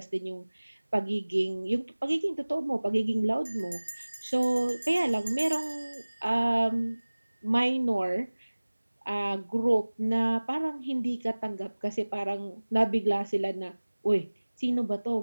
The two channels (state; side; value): inverted; both; correlation -1.00